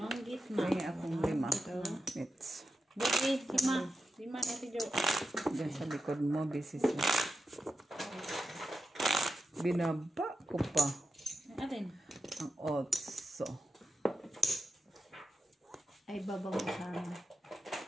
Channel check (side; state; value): both; normal; correlation 0.89